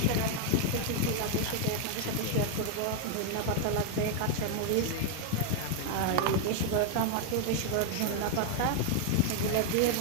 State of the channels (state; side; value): different; both; correlation 0.00